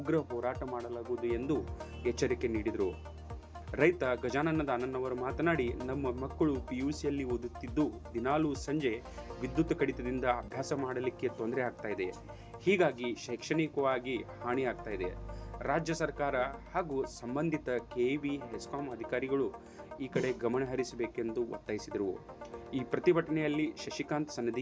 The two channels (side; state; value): both; identical; correlation 1.00